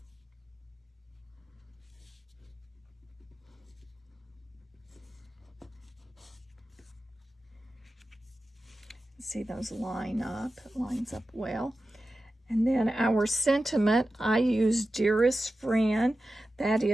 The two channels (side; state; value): both; normal; correlation 0.93